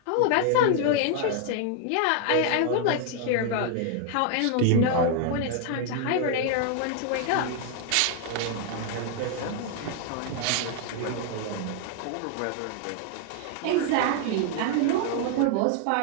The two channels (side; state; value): both; different; correlation 0.00